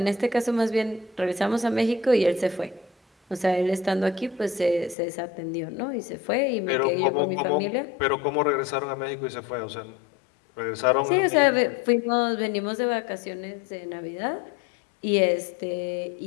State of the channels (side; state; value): right; drops out; at 5.0 s